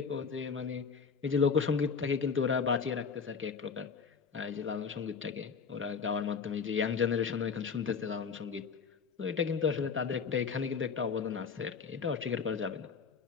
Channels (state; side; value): quieter; right; 5.7 dB